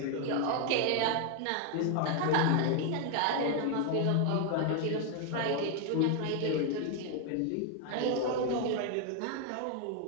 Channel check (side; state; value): both; different; correlation 0.00